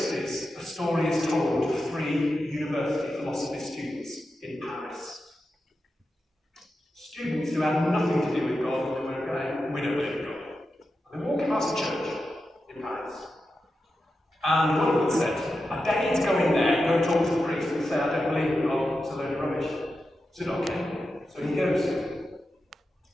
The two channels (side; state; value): both; normal; correlation 0.90